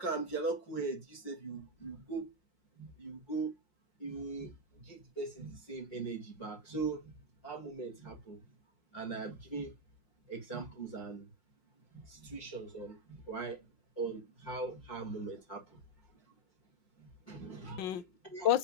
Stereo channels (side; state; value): right; late; 5.6 ms